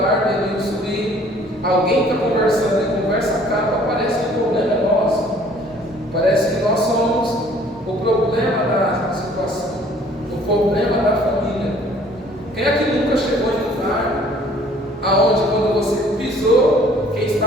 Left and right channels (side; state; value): both; normal; correlation 0.56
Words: Denilson, e alguém está conversando e a conversa acaba, parece que o problema é nosso. Parece que nós somos o problema da situação, o problema da família. Quem é que nunca chegou em um lugar aonde quando você pisou, quem